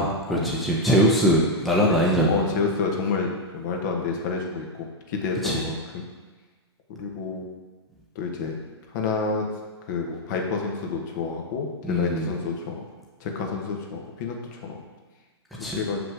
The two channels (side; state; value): both; normal; correlation -0.01